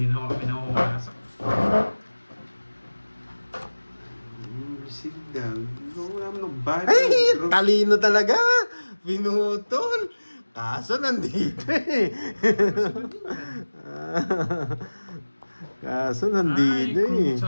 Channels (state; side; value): inverted; both; correlation -1.00